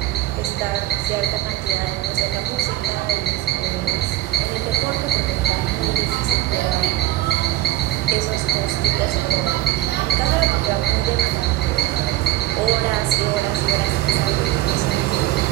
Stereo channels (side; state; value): left; quieter; 15.7 dB